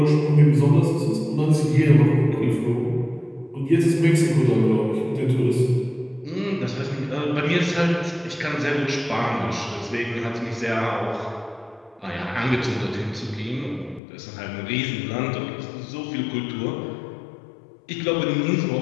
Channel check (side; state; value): right; drops out; at 14.0 s